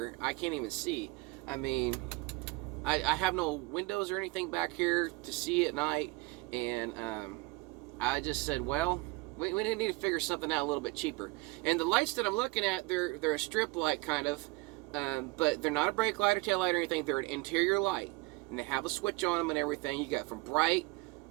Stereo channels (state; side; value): quieter; left; 23.8 dB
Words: I can't even see. I mean, I have no windows or anything back here to see at night, and I just said, well, we need to figure something out a little bit cheaper. And the lights that I'm looking at, they're a strip light kind of, but they're not a brake light or tail light or anything. They're an interior light, and they have a switch on them and everything. You got from bright